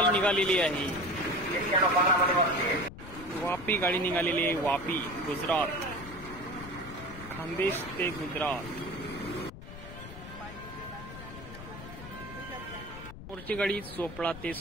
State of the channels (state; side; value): noise; left; rumble, 13 dB below the sound